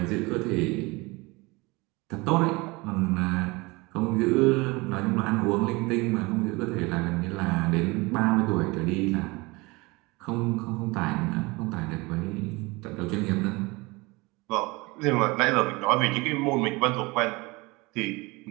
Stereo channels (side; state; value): left; quieter; 24.3 dB